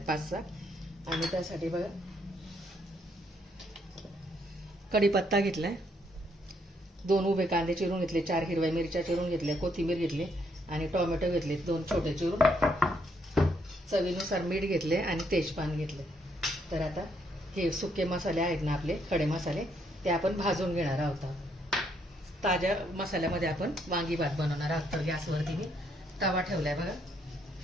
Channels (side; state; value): both; normal; correlation 0.72